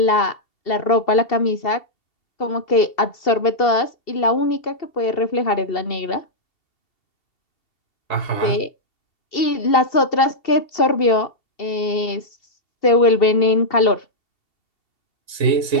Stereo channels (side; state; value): right; late; 2.7 ms